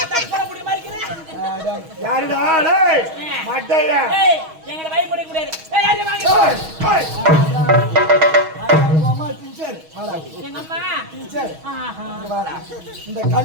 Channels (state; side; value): late; left; 6.3 ms